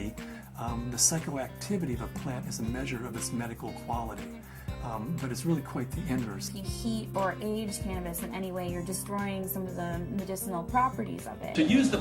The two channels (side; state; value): both; identical; correlation 1.00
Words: the psychoactivity of a plant is a measure of its medical quality. But it's really quite the inverse. If you heat or age cannabis in any way, you're destroying some of the medicinal properties of it. To use the